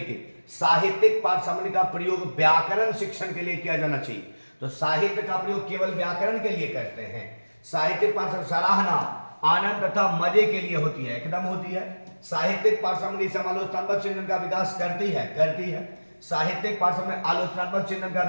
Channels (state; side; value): inverted; both; correlation -1.00